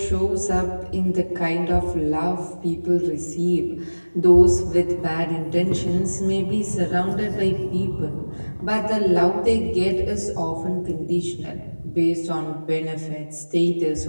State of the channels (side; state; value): both; inverted; correlation -1.00